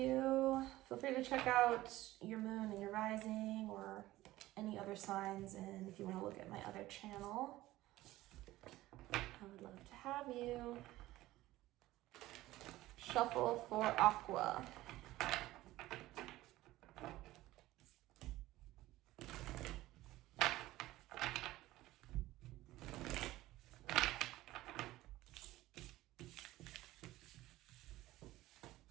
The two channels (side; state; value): left; quieter; 16.8 dB